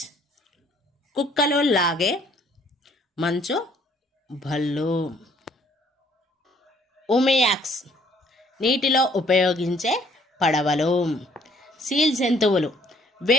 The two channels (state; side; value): normal; both; correlation 0.62